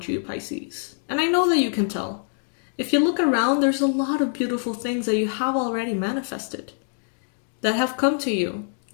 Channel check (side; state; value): right; silent; digital silence